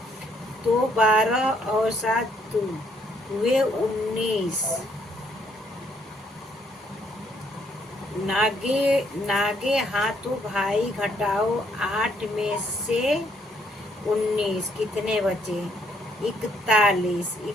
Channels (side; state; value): both; normal; correlation 0.69